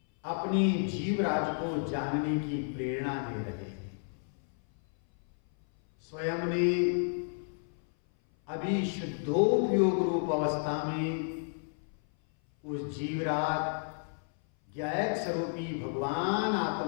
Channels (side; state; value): right; silent; 57 dB below the other